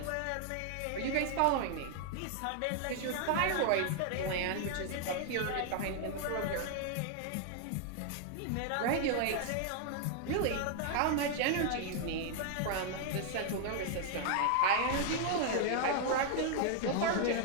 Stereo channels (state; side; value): different; both; correlation 0.00